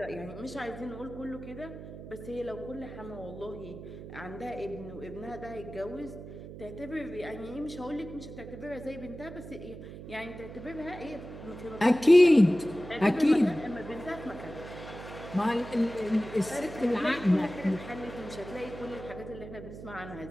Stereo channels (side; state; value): right; noise; hum, 12 dB below the sound